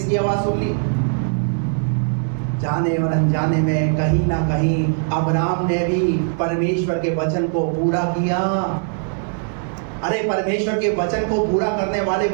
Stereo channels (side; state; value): left; silent; 65 dB below the other